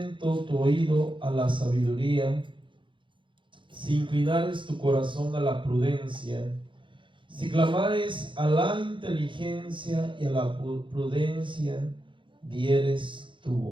tu oído a la sabiduría, si inclinares tu corazón a la prudencia, si clamares a la inteligencia y a la prudencia, dieres tu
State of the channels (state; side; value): late; left; 0.24 ms